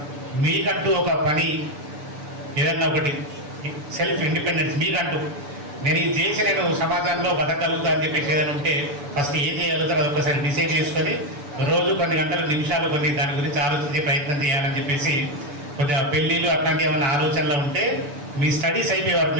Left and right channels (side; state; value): left; late; 6.9 ms